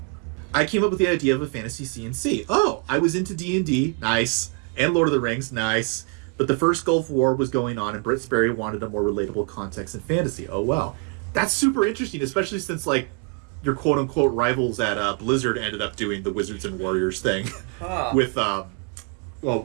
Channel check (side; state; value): left; quieter; 35.7 dB